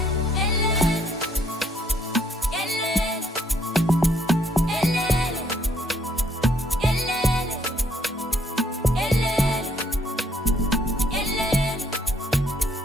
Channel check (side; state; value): both; normal; correlation 0.68